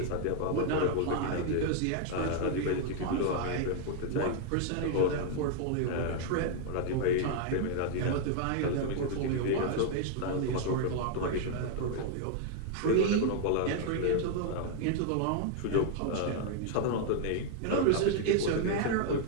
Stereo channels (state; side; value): different; both; correlation 0.00